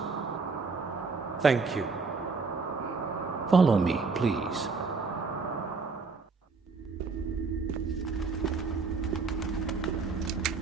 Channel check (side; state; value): left; quieter; 4.5 dB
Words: Thank you. Follow me, please.